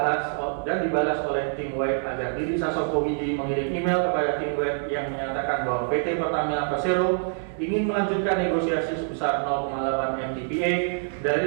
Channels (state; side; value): silent; left; 61 dB below the other